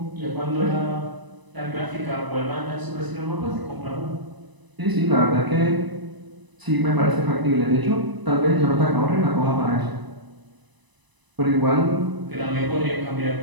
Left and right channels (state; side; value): late; left; 1.0 ms